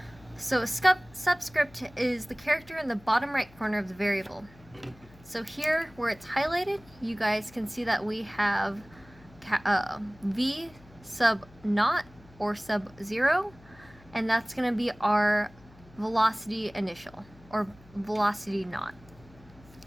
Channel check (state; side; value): noise; left; hum, 24 dB below the sound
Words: So a subscript is the character in the bottom right corner of the variable. So here, where it's highlighted, you guys can see that we have v sub naught or sub 0, and that's going to be our velocity initial, or velocity naught.